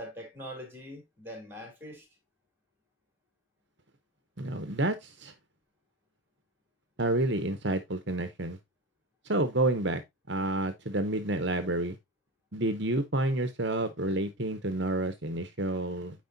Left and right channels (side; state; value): both; normal; correlation 0.23